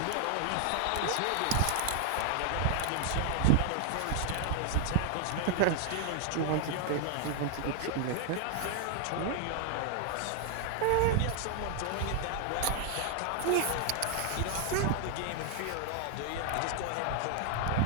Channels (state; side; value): different; both; correlation 0.00